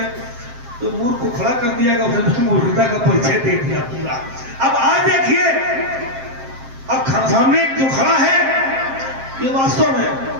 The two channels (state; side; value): late; left; 7.6 ms